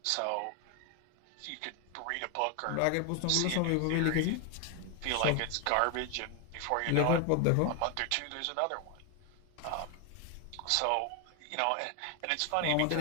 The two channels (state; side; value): different; both; correlation 0.01